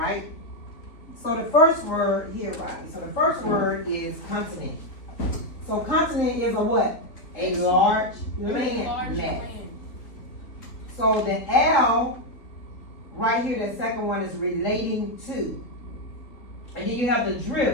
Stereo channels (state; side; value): late; right; 3.5 ms